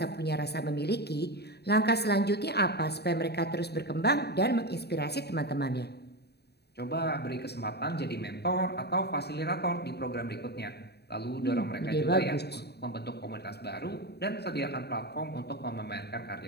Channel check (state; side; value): late; right; 0.48 ms